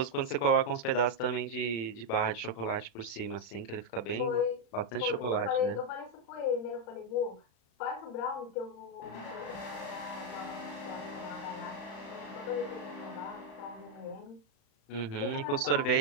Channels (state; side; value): late; right; 35 ms